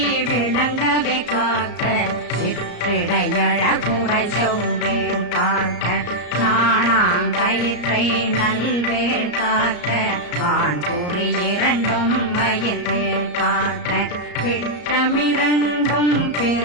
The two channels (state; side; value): late; right; 34 ms